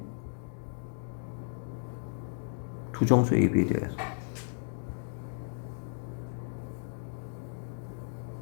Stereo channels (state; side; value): silent; right; 55 dB below the other